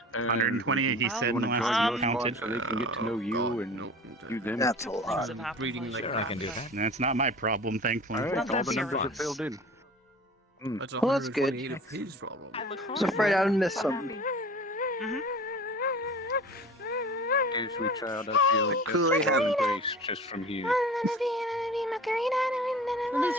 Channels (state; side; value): normal; both; correlation 0.40